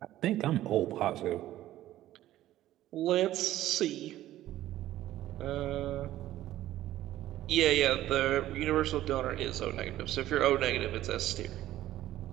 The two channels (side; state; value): left; quieter; 14.0 dB